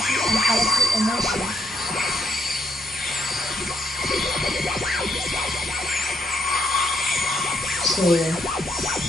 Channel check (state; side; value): normal; both; correlation 0.74